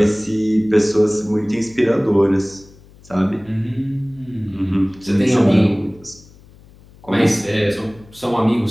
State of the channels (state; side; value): noise; left; hum, 25 dB below the sound